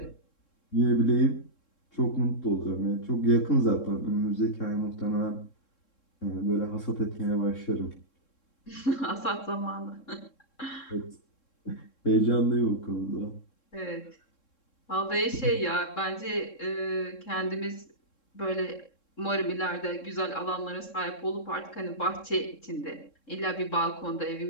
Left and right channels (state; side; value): late; right; 3.7 ms